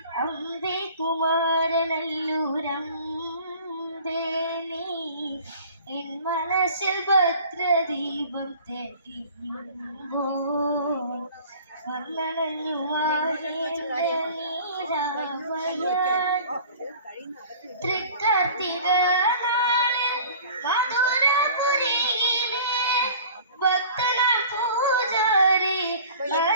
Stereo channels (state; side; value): inverted; both; correlation -0.45